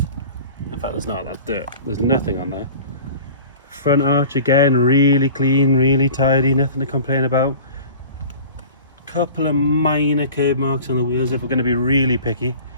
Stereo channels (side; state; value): both; inverted; correlation -0.42